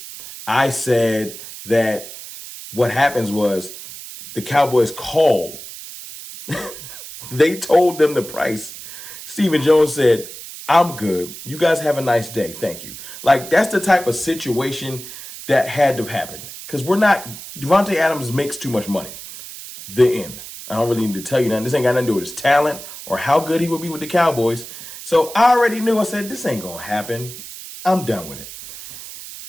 I said that what happens was the Cowboys called. They told them the price. Stephen Jones said, I'm good. You guys have a nice day. Thank you. Like, that's the type of situation that had to have happened. Because Davante Adams makes too much money. The end. I don't really need to tell you nothing. This ain't got nothing to do with his talent or how good he would be with the Cowboys. So I already knew. I said, this ain't going to happen. I'm done with it.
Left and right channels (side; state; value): right; noise; hiss, 13 dB below the sound